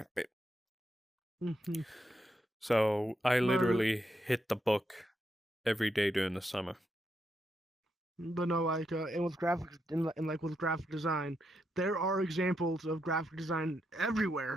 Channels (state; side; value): normal; both; correlation 0.82